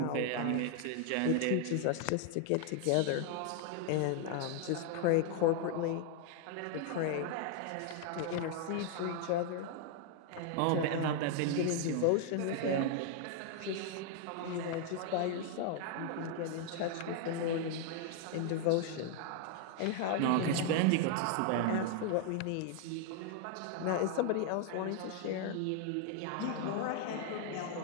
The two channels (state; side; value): different; both; correlation 0.00